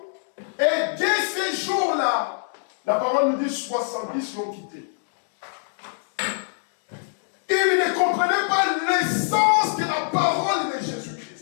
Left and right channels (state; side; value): silent; right; digital silence